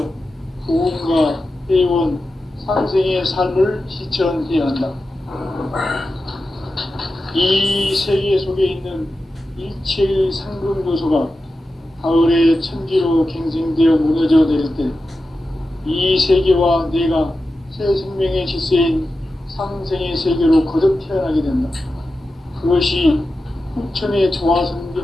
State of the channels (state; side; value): normal; both; correlation 0.92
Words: 보험과 회원, 상생의 삶을 실천해야 한다. 이 세계 속에 있는 일체의 상금 요소가 가을의 천지로 갱생되어 무너져 내릴 때 이 세계와 내가 새 생명의 질서인 상생의 세계로 거듭 태어나게 된다. 그것이 후천의